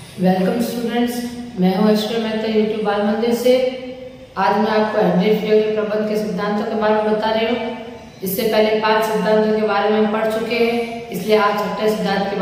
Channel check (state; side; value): identical; both; correlation 1.00